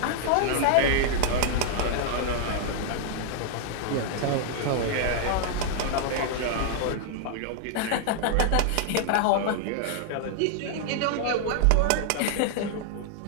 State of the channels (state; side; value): different; both; correlation -0.01